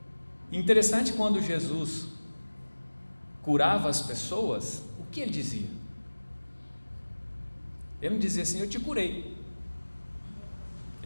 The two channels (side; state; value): both; inverted; correlation -1.00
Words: Interessante, quando Jesus curava as pessoas, o que ele dizia? Ele não dizia assim, eu te curei.